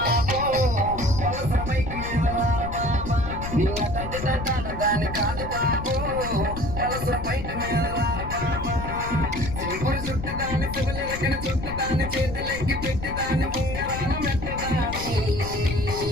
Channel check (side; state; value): left; noise; rumble, 7 dB below the sound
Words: నీ నటండి తంటాడదాని కాదు బాబు బయట మీద సింపుల్ చుట్టుదాన్ని సిగలు ఎక్కడ చుట్టుదాన్ని చేతులెక్కి పెట్టుదాన్ని బొంగరాల మెత్తదాని